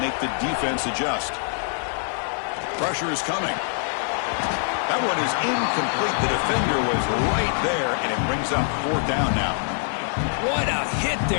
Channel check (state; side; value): silent; right; 61 dB below the other